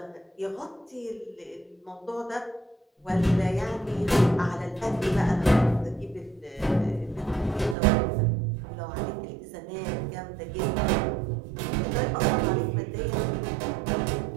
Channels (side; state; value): left; drops out; at 7.8 s